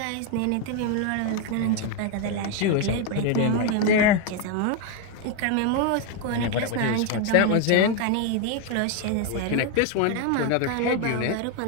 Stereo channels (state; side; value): different; both; correlation 0.01